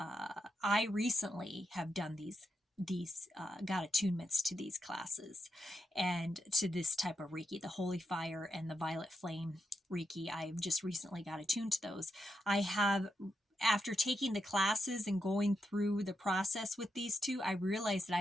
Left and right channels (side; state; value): both; normal; correlation 0.84